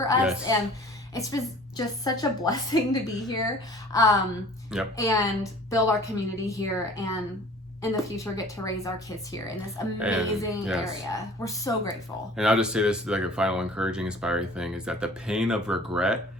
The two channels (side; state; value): both; normal; correlation 0.48